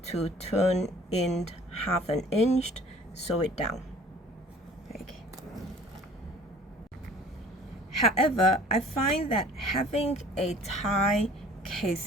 to turn in 1/2 inch, sew it down. Okay. However, I find that having a tie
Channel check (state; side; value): normal; both; correlation 0.50